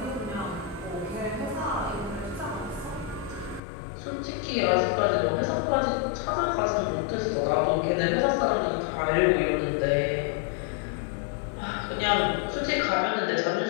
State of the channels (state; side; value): drops out; right; at 3.6 s